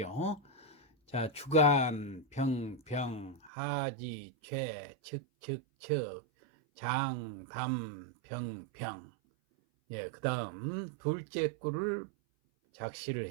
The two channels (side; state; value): left; drops out; at 3.5 s